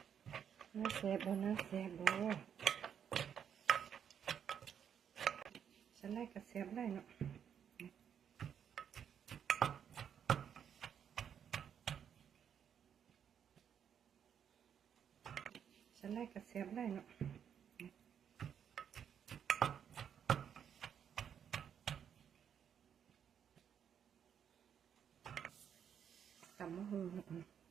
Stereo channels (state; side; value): quieter; left; 8.3 dB